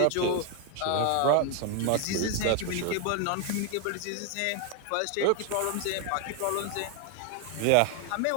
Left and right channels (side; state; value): both; different; correlation 0.01